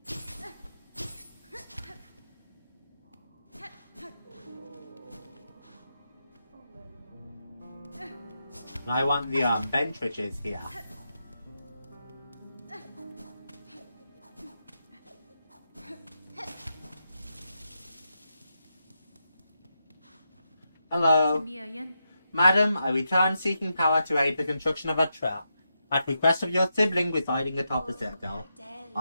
And I want the bench riches here. Hello. Madam, I return seeking power to aid the construction of a trap. At request of your sibling residing atop the citadel.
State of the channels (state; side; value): inverted; both; correlation -0.85